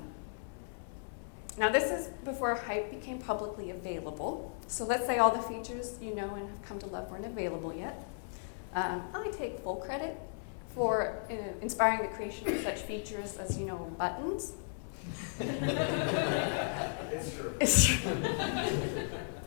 Now this is before Hype became publicly available. So let's say all the features you know and have come to love weren't available yet. I take full credit for inspiring the creation of such features as, buttons. It's true. It's true.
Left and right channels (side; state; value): right; silent; 54 dB below the other